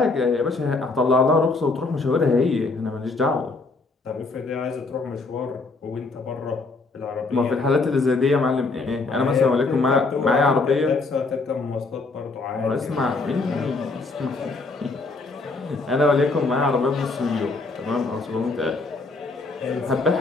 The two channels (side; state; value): right; quieter; 3.6 dB